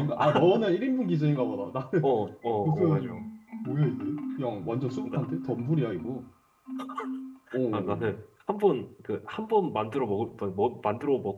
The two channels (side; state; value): both; identical; correlation 1.00